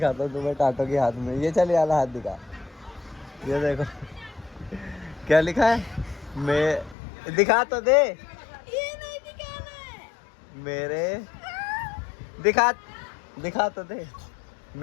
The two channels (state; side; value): drops out; right; at 7.0 s